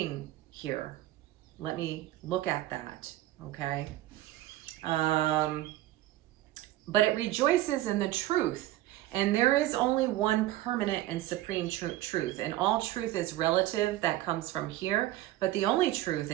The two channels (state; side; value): quieter; left; 15.4 dB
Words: here? Let me look at that, okay? But it rejoices in the truth. And there is only one permanent and supreme truth. And all truth is relative, that comes from here. But the only truth